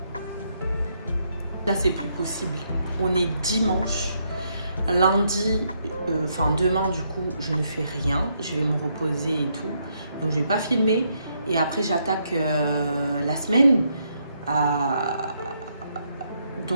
Là, c'est plus possible. On est dimanche. Lundi, demain du coup, je ne fais rien. Je vais me reposer et tout. Donc, je vais pas filmer. Et après, j'attaque la semaine.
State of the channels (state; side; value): inverted; both; correlation -0.76